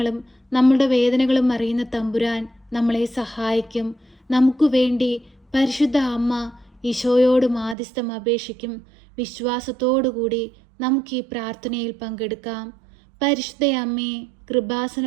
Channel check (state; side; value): drops out; left; at 7.8 s